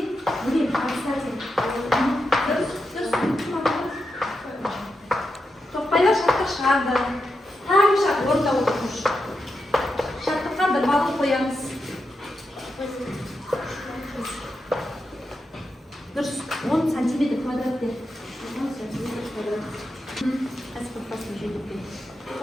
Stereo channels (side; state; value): both; normal; correlation 0.87